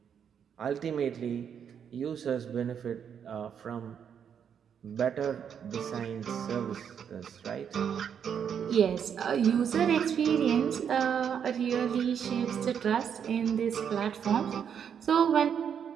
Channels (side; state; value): left; quieter; 7.9 dB